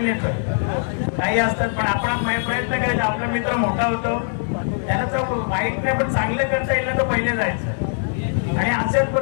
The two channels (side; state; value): right; silent; 65 dB below the other